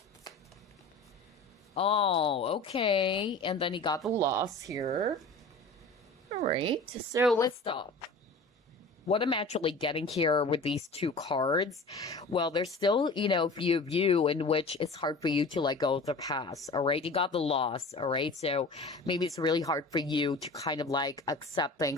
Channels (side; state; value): right; quieter; 3.1 dB